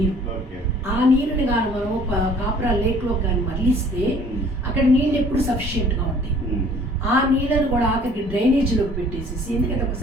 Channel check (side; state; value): both; normal; correlation 0.54